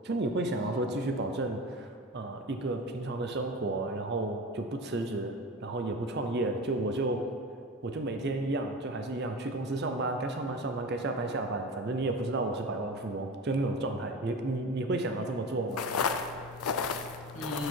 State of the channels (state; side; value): normal; both; correlation 0.30